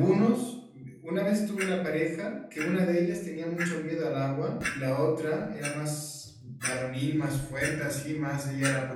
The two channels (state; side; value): identical; both; correlation 1.00